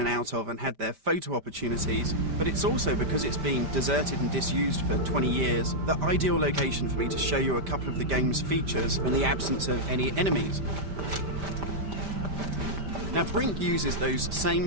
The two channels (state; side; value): late; left; 5.1 ms